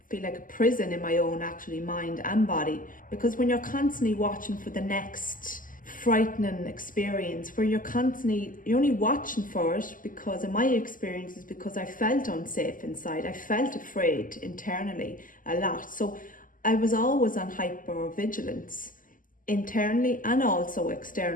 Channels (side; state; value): right; late; 0.39 ms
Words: like a prison in my own actually mind and body, because when you're constantly watching for the next frightening experience, where you're only watching for it, because in my experience is because I felt unsafe inside. I felt afraid internally a lot. So I was always on hypervigilance internally and also